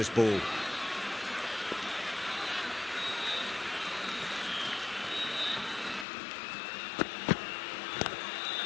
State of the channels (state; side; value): drops out; right; at 6.1 s